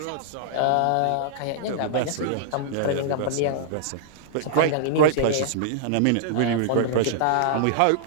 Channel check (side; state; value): both; different; correlation -0.02